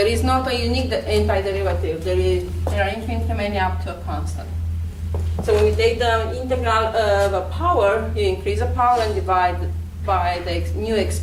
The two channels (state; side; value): identical; both; correlation 1.00